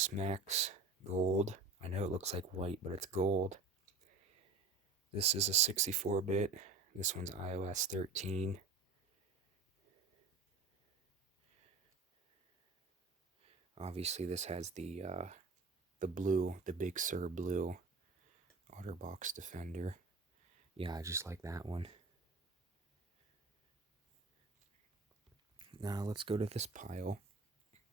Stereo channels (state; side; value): quieter; left; 3.9 dB